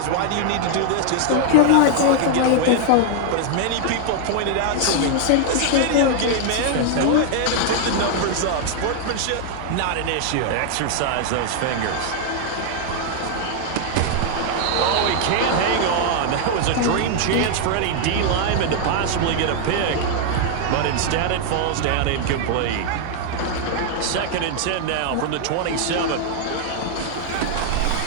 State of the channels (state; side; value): different; both; correlation 0.00